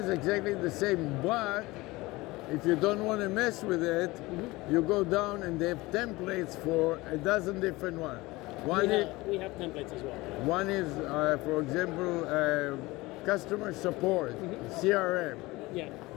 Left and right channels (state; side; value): quieter; right; 21.1 dB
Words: exactly the same, but if you don't want to mess with it, you go down and they have templates for a dozen different ones. We have templates as well. One is, for example, customer support, CRM. Yeah.